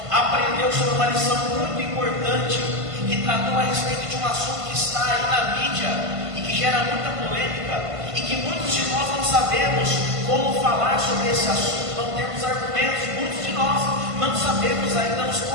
aprendeu sobre uma lição muito importante, que tratou a respeito de um assunto que está aí na mídia e que gera muita polêmica, e que muitos de nós não sabemos como falar sobre esse assunto, não temos argumentos. Muitos de nós não sabemos ainda nos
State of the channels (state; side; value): late; left; 1.5 ms